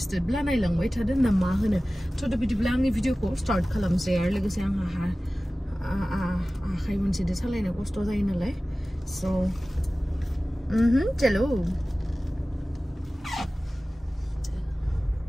ब्ला नायलांबाय थादो ना मा होनो थ' बिदिब्ला आंनि भिडिअखौ स्टार्ट खालामसै आरो लोगोसे आंहा आखाइ मोनसेजों सालायनो खस्थ' जायो नालाय सो चलो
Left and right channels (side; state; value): both; normal; correlation 0.97